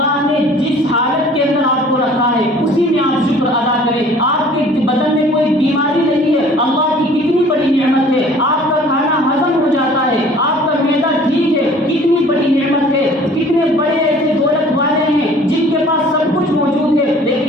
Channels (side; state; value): both; normal; correlation 0.51